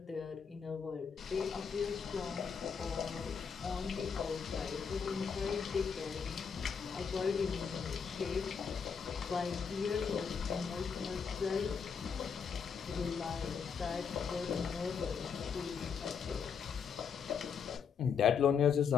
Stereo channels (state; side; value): quieter; right; 6.4 dB